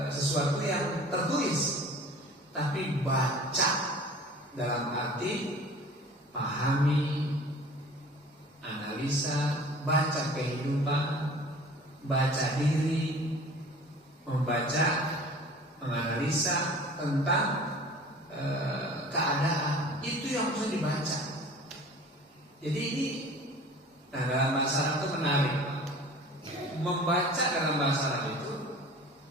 sesuatu yang tertulis, tapi baca dalam arti pahami, analisa, baca kehidupan, baca diri, membaca, menganalisa tentang keadaan. Itu yang harus dibaca. Jadi ini, nah dalam bahasa Arab itu menarik. Membaca dalam bahasa Arab itu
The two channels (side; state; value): both; normal; correlation 0.44